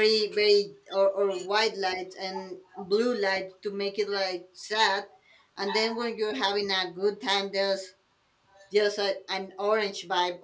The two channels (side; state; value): both; identical; correlation 1.00